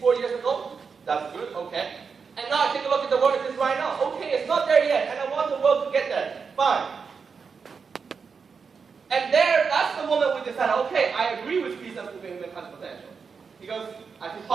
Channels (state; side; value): quieter; left; 5.6 dB